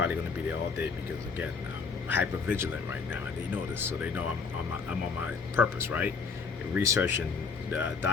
going to be there all day because again, I'm hyper vigilant right now, and they know this, so they know I'm on my purpose, right? Research and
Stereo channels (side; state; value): right; quieter; 5.1 dB